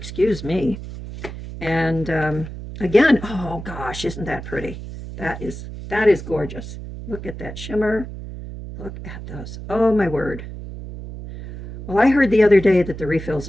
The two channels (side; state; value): right; noise; hum, 10 dB below the sound